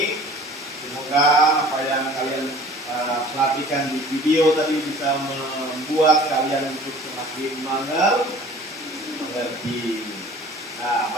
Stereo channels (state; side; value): normal; both; correlation 0.47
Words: Semoga apa yang kalian perhatikan di video tadi bisa membuat kalian untuk semakin mengerti. Nah,